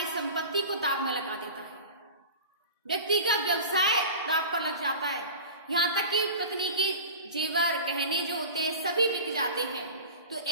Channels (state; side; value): inverted; both; correlation -0.35